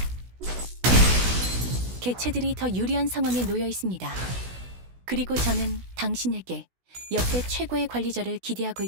개체들이 더 유리한 상황에 놓여 있습니다. 그리고 저는 당신에게 역대 최고의 관리자를 기대하고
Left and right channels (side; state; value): left; late; 16 ms